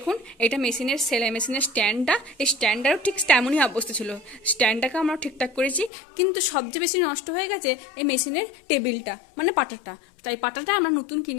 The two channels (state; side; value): drops out; right; at 5.9 s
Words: এটা মেশিনের সেলাই মেশিনের স্ট্যান্ডটা, এই স্ট্যান্ডটারও ঠিক তেমনই অবস্থা ছিল। স্ট্যান্ডটাকে আমরা ঠিকঠাক করেছি, কিন্তু সবচেয়ে বেশি নষ্ট হয়ে গেছে এই মেশিনের টেবিলটা, মানে পাটাটা। তাই পাটাটা আমরা নতুন